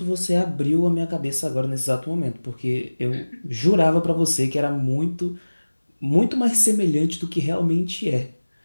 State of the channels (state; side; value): inverted; both; correlation -1.00